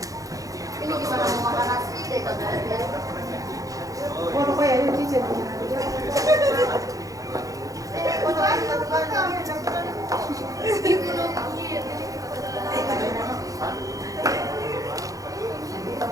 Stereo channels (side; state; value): left; late; 0.17 ms